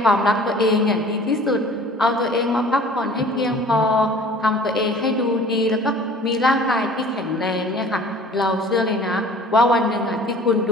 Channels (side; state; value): both; normal; correlation 0.48